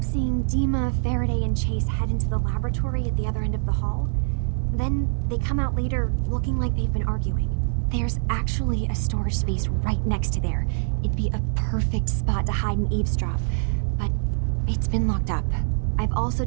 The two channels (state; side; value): silent; left; 62 dB below the other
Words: seeing DIMA, Faraday, and Chase head into the laboratory at the other end of the hall. Then they come out later looking like they've been arguing. There's actually a storage space right next to there. It'd be a perfect spot to hide and eavesdrop, but it's been locked up. I've also